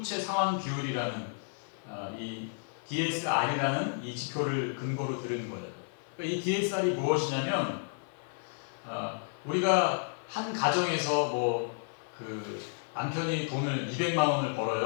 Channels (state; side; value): silent; right; 56 dB below the other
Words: 상환 비율이라는 이 DSR이라는 이 지표를 근거로 들은 거예요. 그러니까 이 DSR이 무엇이냐면 우리가 한 가정에서 그 남편이 돈을 200만 원을